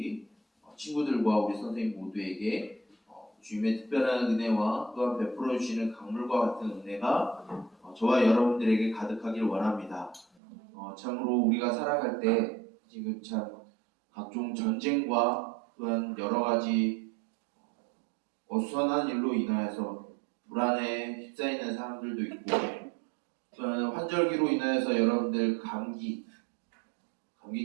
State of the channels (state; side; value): drops out; left; at 10.2 s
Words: 친구들과 우리 선생님 모두에게 주님의 특별한 은혜와 또한 베풀어 주시는 강물과 같은 은혜가 저와 여러분들에게 가득하길 원합니다. 참으로 우리가 살아갈 때 지금 참 각종 전쟁과 또한 여러 가지 어수선한 일로 인하여서 불안에 휩싸이는 사람들도 있고 또한 환절기로 인하여서 여러분들 감기